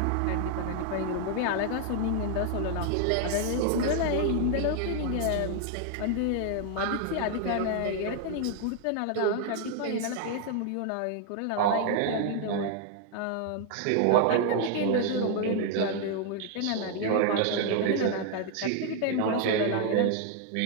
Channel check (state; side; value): different; both; correlation 0.00